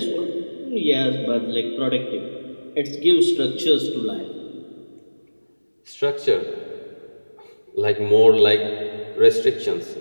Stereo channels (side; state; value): both; inverted; correlation -1.00